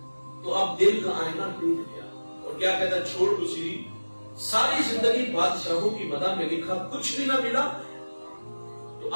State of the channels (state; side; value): inverted; both; correlation -1.00